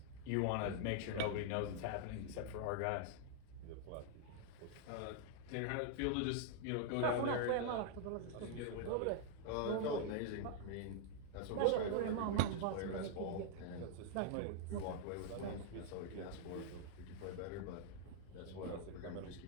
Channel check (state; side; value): different; both; correlation -0.01